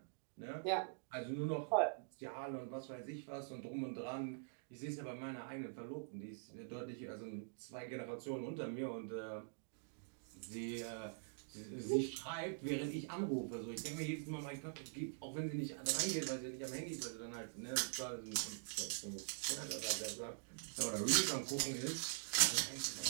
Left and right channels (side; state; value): left; silent; digital silence